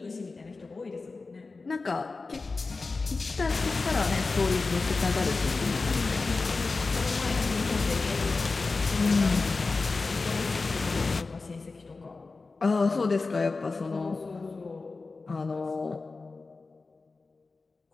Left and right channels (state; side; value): quieter; right; 3.9 dB